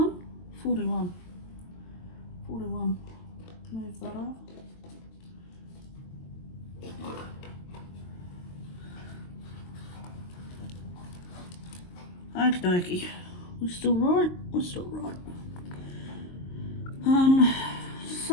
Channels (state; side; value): late; right; 22 ms